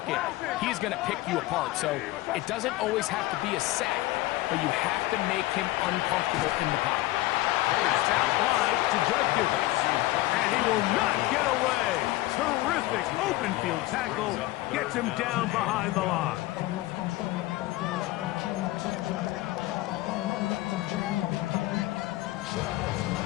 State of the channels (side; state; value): right; quieter; 18.0 dB